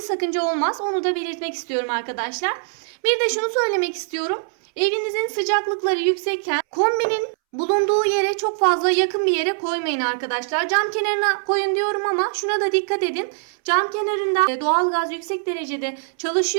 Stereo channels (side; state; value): left; silent; 64 dB below the other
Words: sakınca olmaz. Onu da belirtmek istiyorum arkadaşlar. Bir de şunu söylemek istiyorum. Evinizin sıcaklıkları yüksekken kombinin bulunduğu yere çok fazla yakın bir yere koymayın arkadaşlar. Cam kenarına koyun diyorum ama şuna da dikkat edin. Cam kenarında doğalgaz yüksek derecede